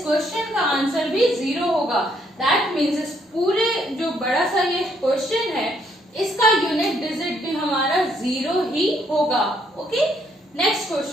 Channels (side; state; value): both; normal; correlation 0.70